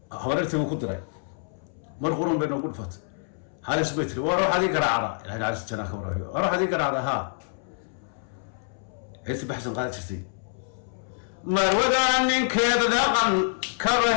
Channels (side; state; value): right; silent; 60 dB below the other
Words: habareertii uu ku diray mar qurun bay noogu dhufatay halis bay tiri war waxaad ii garaacda ilaahay naxariistii jannaa ka waraabi war waxaad ii garaacda haa heesti baxsan qaadi jirtay marwada ninkeeda dhaqan